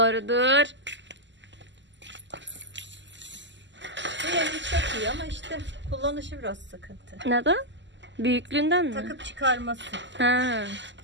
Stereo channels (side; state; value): left; late; 0.53 ms